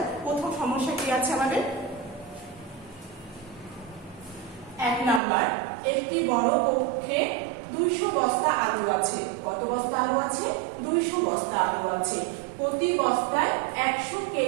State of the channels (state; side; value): drops out; left; at 5.2 s